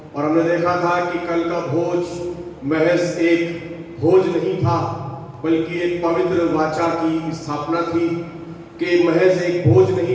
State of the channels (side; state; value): both; identical; correlation 1.00